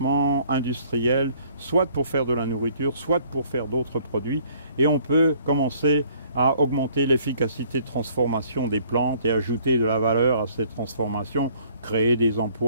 industriel, soit pour faire de la nourriture, soit pour faire d'autres produits, et on peut commencer à augmenter l'efficacité de transformation des plantes et ajouter de la valeur à cette transformation, créer des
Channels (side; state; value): both; inverted; correlation -0.59